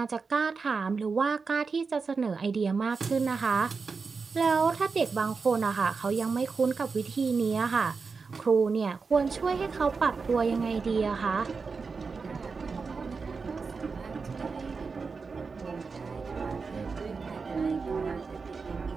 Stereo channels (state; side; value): quieter; left; 4.8 dB